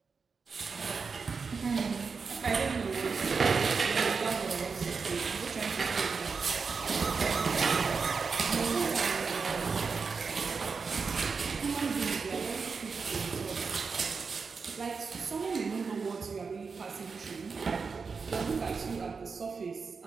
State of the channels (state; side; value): quieter; left; 5.1 dB